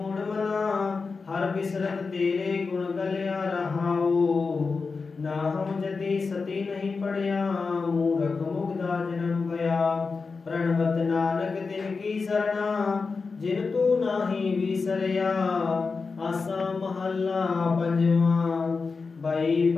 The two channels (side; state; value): right; quieter; 4.5 dB